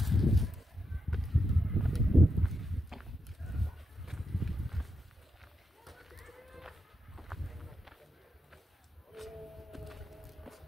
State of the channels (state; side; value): normal; both; correlation 0.85